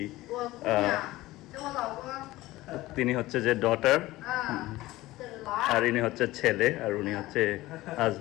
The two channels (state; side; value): quieter; right; 17.8 dB